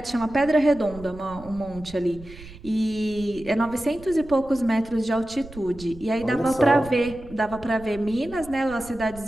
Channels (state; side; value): noise; right; rumble, 18 dB below the sound